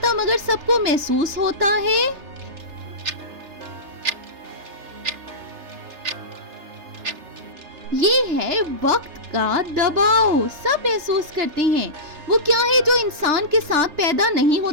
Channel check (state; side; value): late; left; 3.3 ms